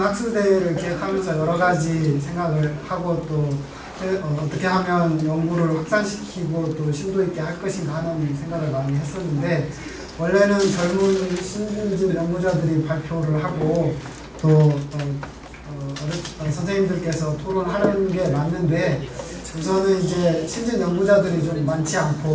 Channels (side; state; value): both; identical; correlation 1.00